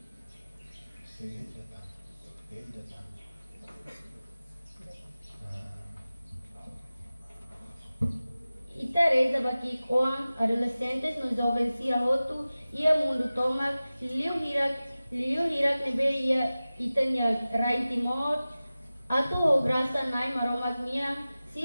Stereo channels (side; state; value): both; inverted; correlation -0.96